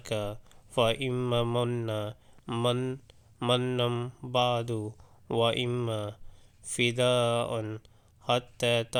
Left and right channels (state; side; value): identical; both; correlation 1.00